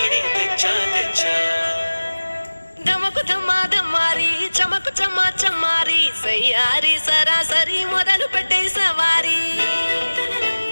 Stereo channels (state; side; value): inverted; both; correlation -1.00